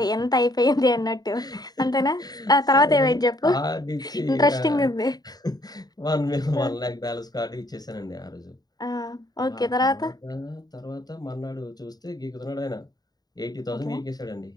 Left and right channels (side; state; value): right; late; 0.19 ms